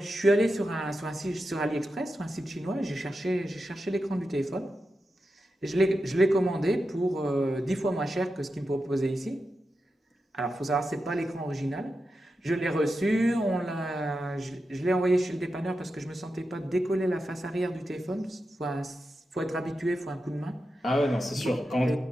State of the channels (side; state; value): both; normal; correlation 0.89